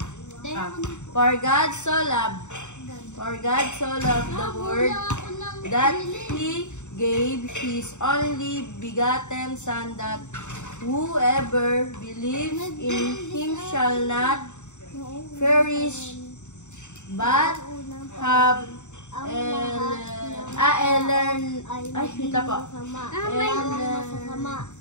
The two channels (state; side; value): late; right; 0.84 ms